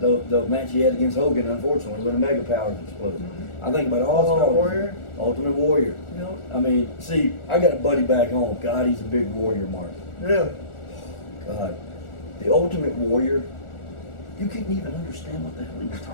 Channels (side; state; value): right; late; 1.4 ms